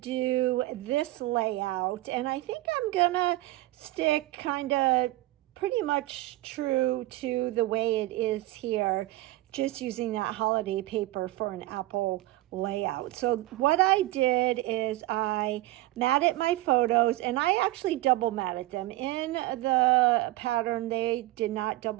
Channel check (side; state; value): left; quieter; 17.7 dB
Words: this layout, and I think I'm going to stick kind of pretty much true to the way it is here, just using that holiday paper for an apple layout. So what I did is I matted my photos, and I actually double matted them. In the pattern, they did not